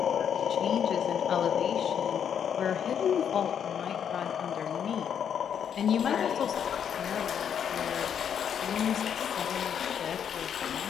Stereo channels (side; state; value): right; quieter; 8.4 dB